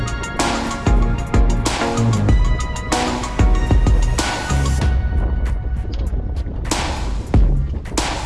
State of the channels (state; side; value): identical; both; correlation 1.00